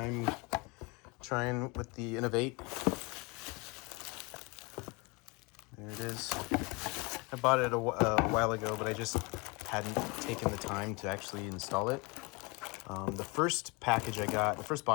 trying with the Innovate. There it is. I bought it a while ago, but I just hadn't taken the time to actually install it. The first box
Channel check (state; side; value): quieter; right; 27.8 dB